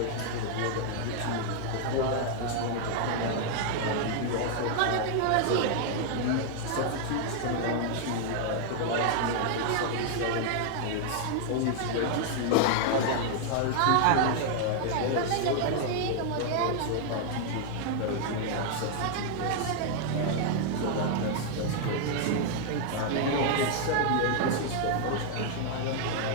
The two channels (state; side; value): different; both; correlation 0.00